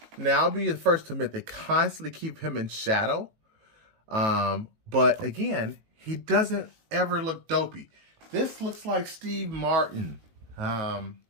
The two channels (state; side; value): late; left; 19 ms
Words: Now, I'll be the first to admit they constantly keep him in shadow. But again, he doesn't ever look dopey. This looks like Steve Martin